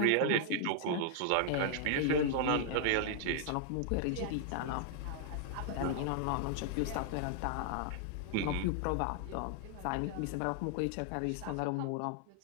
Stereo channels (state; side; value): different; both; correlation -0.01